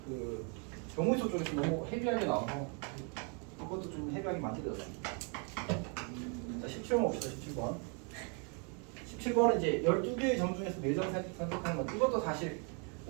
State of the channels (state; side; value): quieter; left; 37.6 dB